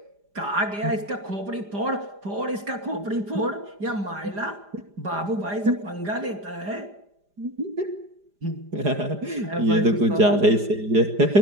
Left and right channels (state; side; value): late; left; 5.0 ms